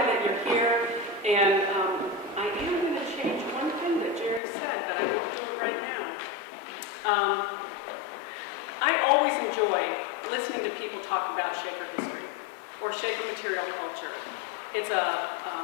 that you're here, and I am going to change one thing that Jerry said, but I won't do it right now. I always enjoy listening to people talk about Shaker history or Shaker material culture. It's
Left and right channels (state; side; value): drops out; right; at 4.4 s